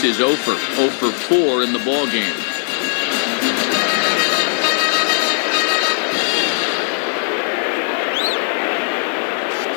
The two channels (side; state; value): right; silent; 63 dB below the other